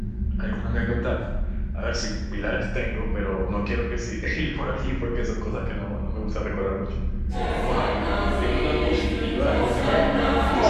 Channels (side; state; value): both; identical; correlation 1.00